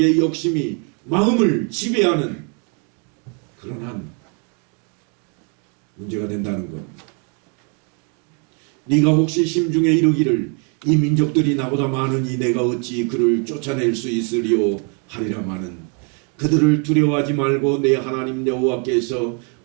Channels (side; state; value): left; quieter; 37.5 dB